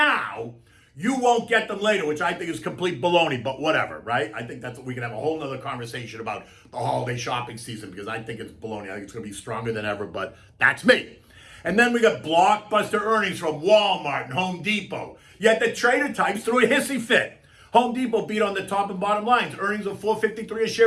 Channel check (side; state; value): both; identical; correlation 1.00